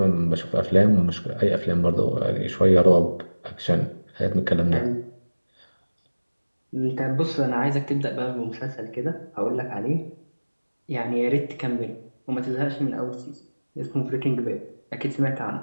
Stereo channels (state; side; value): inverted; both; correlation -1.00